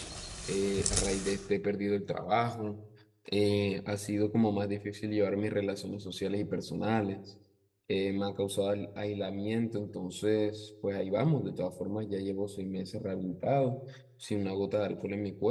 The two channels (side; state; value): both; identical; correlation 1.00